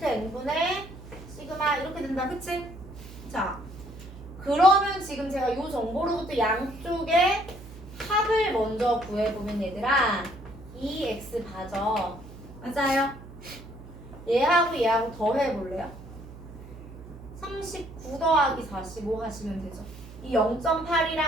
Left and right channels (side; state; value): right; noise; hum, 16 dB below the sound